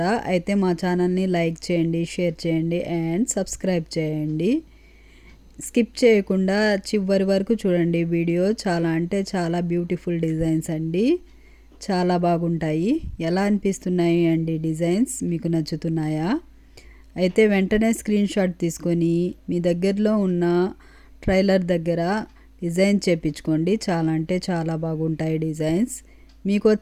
అయితే మా ఛానల్ని లైక్ చేయండి, షేర్ చేయండి అండ్ సబ్స్క్రైబ్ చేయండి. స్కిప్ చేయకుండా చివరి వరకు చూడండి. వీడియో చాలా అంటే చాలా బ్యూటిఫుల్ డిజైన్స్ అండి. చాలా బాగుంటాయి. ఎలా అనిపిస్తున్నాయి అండి డిజైన్స్? మీకు నచ్చుతున్నాయా? అయితే వెంటనే స్క్రీన్ షాట్ తీసుకొని మీ దగ్గరలో ఉన్న ట్రైలర్ దగ్గర డిజైన్ చేపించుకోండి. చాలా అంటే చాలా బాగుంటాయి డిజైన్స్. మీకు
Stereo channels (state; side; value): identical; both; correlation 1.00